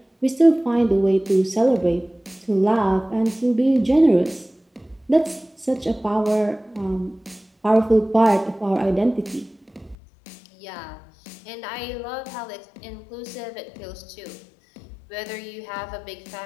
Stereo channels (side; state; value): right; drops out; at 10.0 s